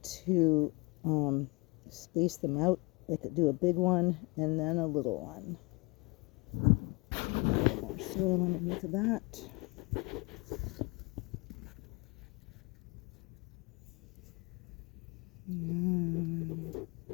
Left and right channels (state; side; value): quieter; right; 26.6 dB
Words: to space them out. I could do a big one and then a little one. A little more soil underneath of that.